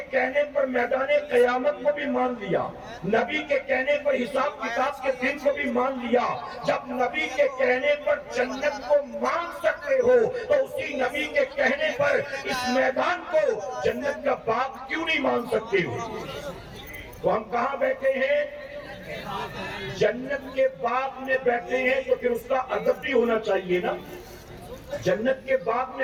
کہنے پر میدان قیامت کو بھی مان لیا، نبی کے کہنے پر حساب کتاب کے دن کو بھی مان لیا۔ جب نبی کے کہنے پر جنت کو مان سکتے ہو تو اسی نبی کے کہنے پر اس میدان کو جنت کا باغ کیوں نہیں مان سکتے ہو؟ تو ہم کہاں بیٹھے ہیں؟ جنت کے باغ میں بیٹھے ہیں تو پھر اس کا ادب بھی ہونا چاہیے نا، جنت کے باغ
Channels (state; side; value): identical; both; correlation 1.00